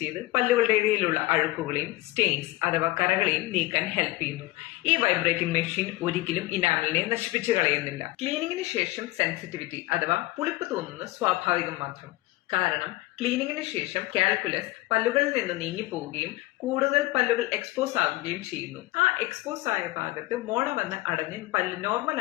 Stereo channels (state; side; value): quieter; right; 19.2 dB